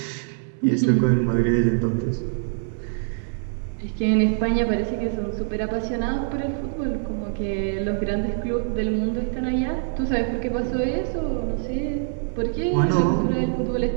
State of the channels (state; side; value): silent; left; digital silence